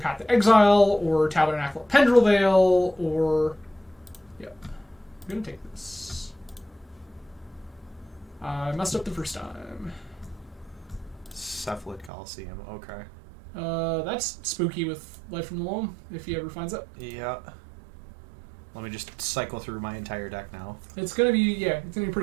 to Exile, or Tabernacle of Pendrelvale, or... Yeah. I'm gonna take this. I messed up the first time. Cephalid Coliseum, okay. That's spooky with Life from the Loam, if he ever finds it. Yeah. Let me just cycle through my entire deck now. It's gonna be, yeah, it's gonna be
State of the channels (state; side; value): drops out; left; at 12.1 s